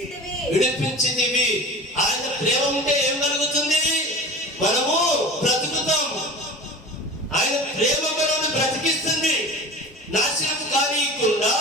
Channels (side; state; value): both; normal; correlation 0.35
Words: విడిపించితివి. ఆయన ప్రేమ ఉంటే ఏం కలుగుతుంది? మనము బ్రతుకుతాం. ఆయన ప్రేమ మనల్ని బ్రతికిస్తుంది. నాశనం కానీయకుండా